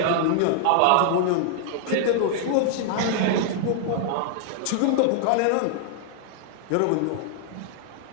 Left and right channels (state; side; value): different; both; correlation -0.01